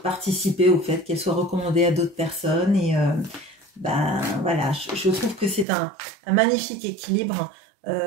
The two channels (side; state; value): left; drops out; at 5.7 s